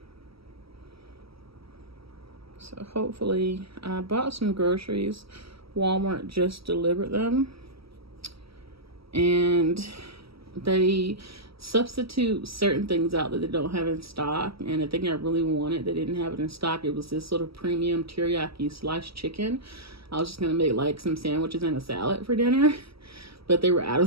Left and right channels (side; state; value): left; late; 0.75 ms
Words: So hopefully, I bought some groceries. Walmart just delivered them. And they substitute certain things out that they don't have in stock. And the thing I really wanted, they didn't have it in stock. It was this sort of premium teriyaki sliced chicken. I was just gonna make like some sandwiches and a salad for dinner, but they were out